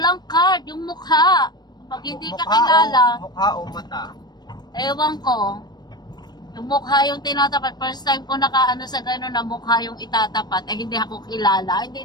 card, yung mukha. Pag hindi ka kilala, Mukha o mata? ewan ko. Yung mukha yung tinatapat. First time ko nakaano sa gano'n na mukha yung itatapat. Eh, hindi ako kilala.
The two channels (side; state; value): right; late; 0.20 ms